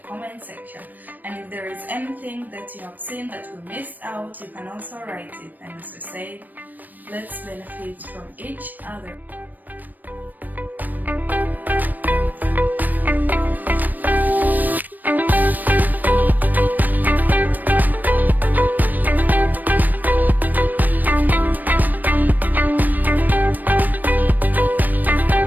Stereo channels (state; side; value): late; left; 0.087 ms